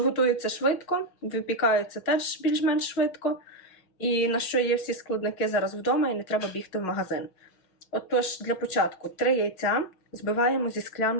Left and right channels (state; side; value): late; right; 6.0 ms